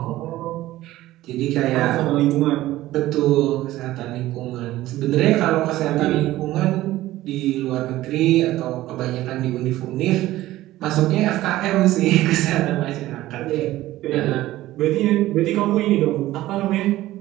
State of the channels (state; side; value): quieter; left; 15.9 dB